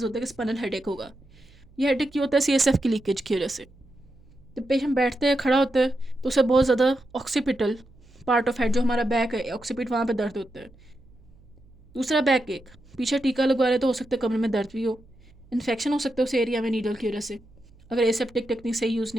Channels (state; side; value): noise; right; hum, 27 dB below the sound